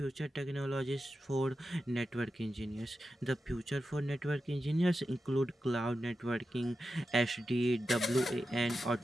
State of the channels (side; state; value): both; normal; correlation 0.90